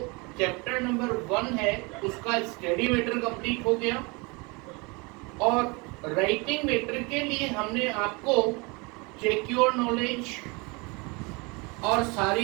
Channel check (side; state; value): left; quieter; 28.2 dB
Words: चैप्टर नंबर 1 है उसका स्टडी मैटर कंप्लीट हो गया और राइटिंग मैटर के लिए हमने आपको चेक योर नॉलेज और